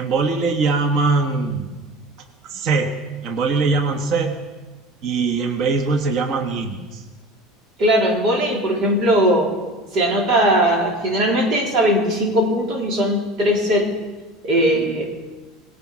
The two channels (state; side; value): normal; both; correlation 0.37